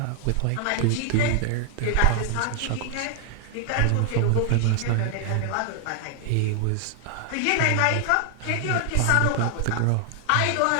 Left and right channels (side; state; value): both; different; correlation 0.00